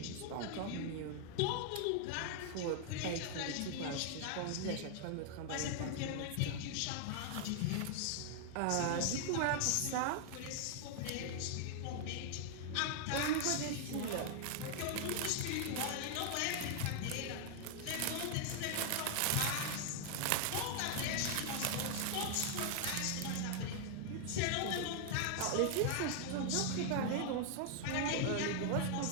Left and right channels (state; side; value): different; both; correlation 0.00